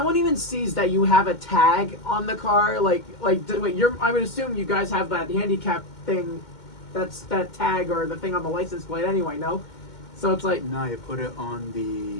even sees that you have a tag on the car, wait, I would assume you guys have that handicap thing that tag or the thing on the license plate anyway. No, so it's like No, you put it on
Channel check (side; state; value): right; late; 2.1 ms